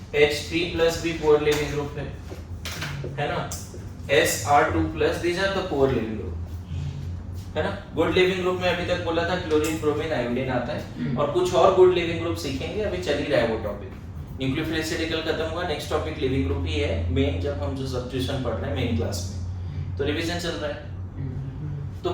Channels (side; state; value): both; identical; correlation 1.00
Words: plus भी पुअर लिविंग ग्रुप है ना, SR2 plus, these are the poor leaving group, है ना। गुड लिविंग ग्रुप में अभी तक बोला था क्लोरीन, ब्रोमीन, आयोडीन आता है, और कुछ और गुड लिविंग ग्रुप सीखेंगे, अभी चल ही रहा है वो टॉपिक। न्यूक्लियोफिलिसिटिकल खत्म हुआ, नेक्स्ट टॉपिक लिविंग ग्रुप ही है मेन, जब हम जो सब्स्टिट्यूशन पढ़ रहे हैं मेन क्लास में, तो रिवीजन चल रहा है। तो